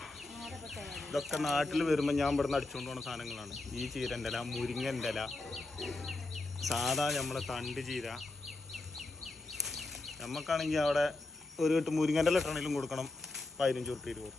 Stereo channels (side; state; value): right; quieter; 3.0 dB